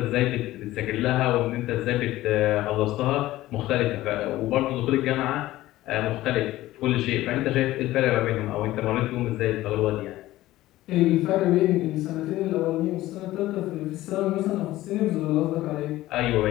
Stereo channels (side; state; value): right; quieter; 16.1 dB